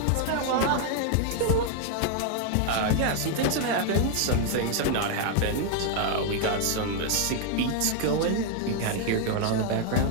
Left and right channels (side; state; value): both; different; correlation 0.00